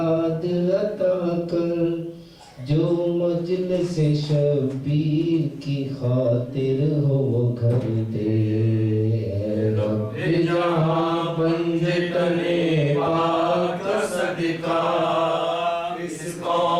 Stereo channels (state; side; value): identical; both; correlation 1.00